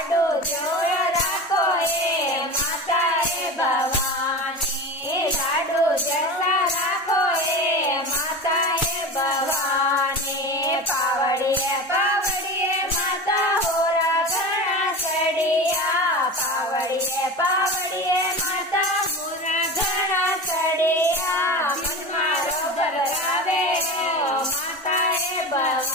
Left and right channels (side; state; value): both; normal; correlation 0.29